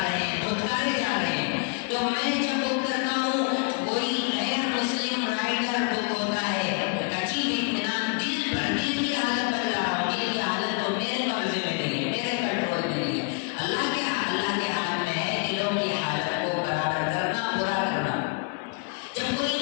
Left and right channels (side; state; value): right; quieter; 35.5 dB